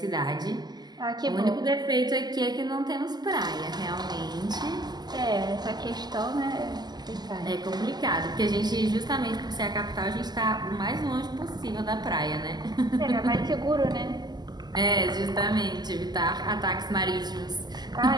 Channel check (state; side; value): late; left; 0.20 ms